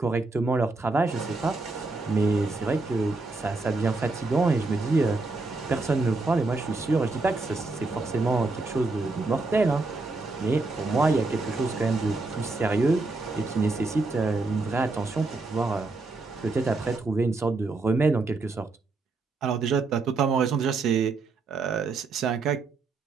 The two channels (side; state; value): left; quieter; 3.6 dB